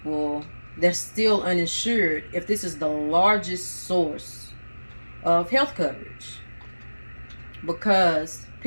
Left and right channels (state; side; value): inverted; both; correlation -1.00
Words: that's still uninsured if this is the largest source of health coverage? Because